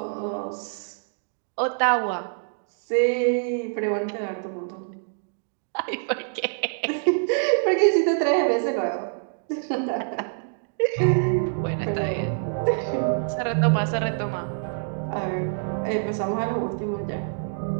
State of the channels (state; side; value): silent; left; digital silence